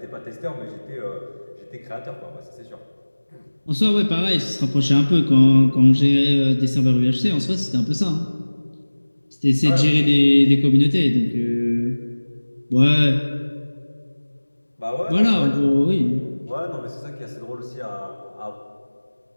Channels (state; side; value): inverted; both; correlation -1.00